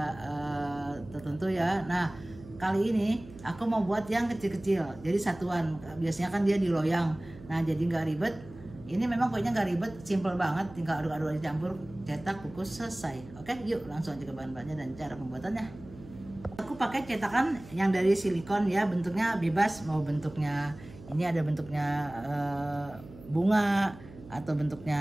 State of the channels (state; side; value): noise; right; hum, 18 dB below the sound